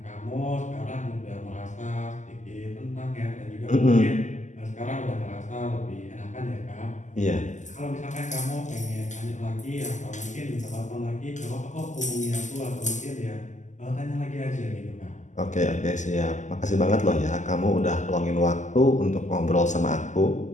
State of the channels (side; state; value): right; late; 0.35 ms